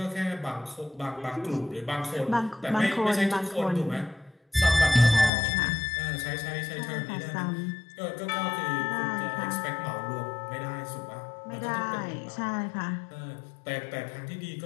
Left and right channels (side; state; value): right; drops out; at 5.3 s